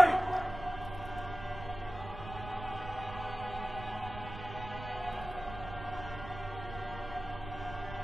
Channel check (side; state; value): right; noise; rumble, 11 dB below the sound